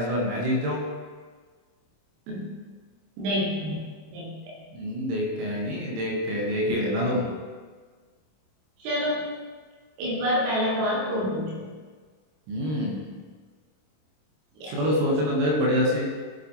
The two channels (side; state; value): left; late; 26 ms